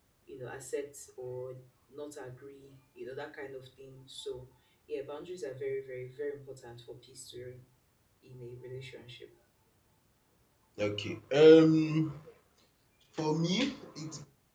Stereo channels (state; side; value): identical; both; correlation 1.00